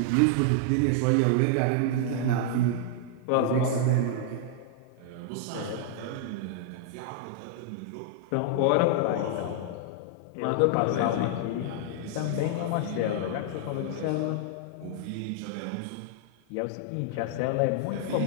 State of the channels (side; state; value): both; different; correlation -0.01